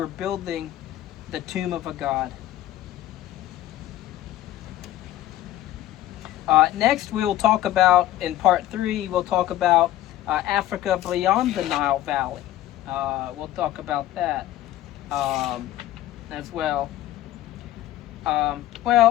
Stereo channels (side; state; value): right; quieter; 13.9 dB